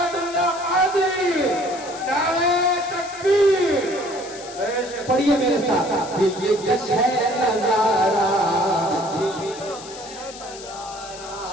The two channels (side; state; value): left; noise; hiss, 15 dB below the sound